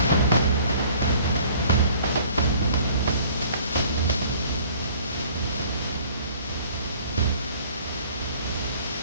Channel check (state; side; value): inverted; both; correlation -0.54